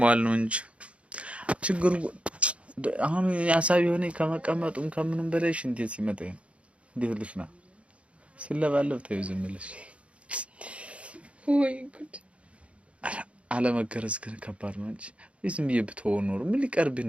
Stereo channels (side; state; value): left; late; 0.061 ms